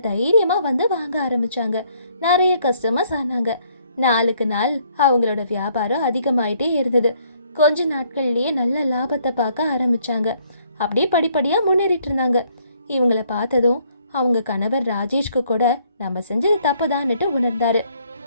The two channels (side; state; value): both; inverted; correlation -0.66